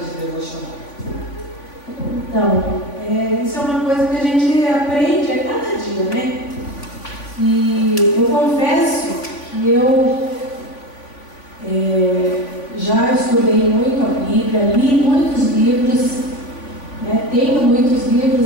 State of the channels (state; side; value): late; right; 3.5 ms